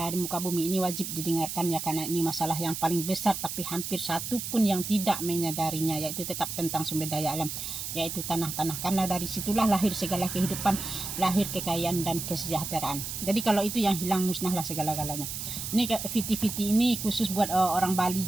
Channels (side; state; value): right; noise; hiss, 6 dB below the sound